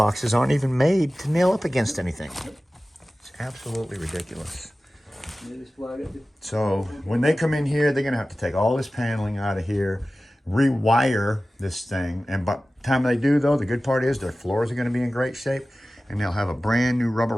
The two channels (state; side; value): normal; both; correlation 0.96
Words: aren't even made to nail up against anything. It's absolutely ridiculous. So when they come in here, they're gonna have to take all this paneling out of here, rewire this thing, and by the time they do though, the good part is their floors are gonna be in great shape, and they'll have a brand new rubber